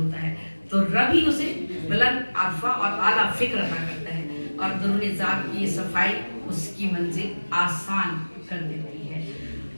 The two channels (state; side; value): inverted; both; correlation -1.00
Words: ہے, تو رب ہی اسے بلند عرفہ اور اعلیٰ فکر عطا کرتا ہے, اور درون ذات کی یہ صفائی اس کی منزل آسان کر دیتی ہے.